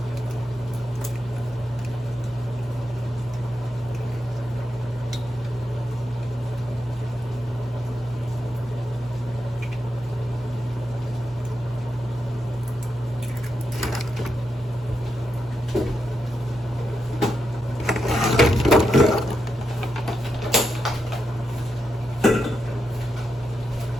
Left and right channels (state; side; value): normal; both; correlation 0.85